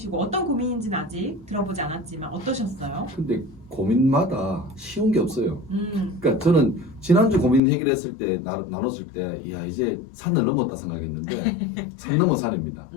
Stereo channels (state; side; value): drops out; right; at 7.6 s